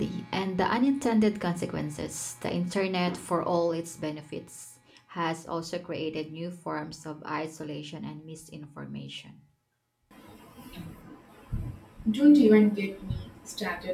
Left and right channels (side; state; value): both; identical; correlation 1.00